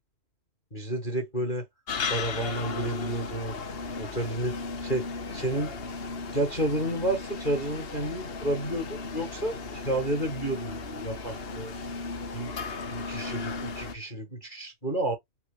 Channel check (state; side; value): late; right; 2.8 ms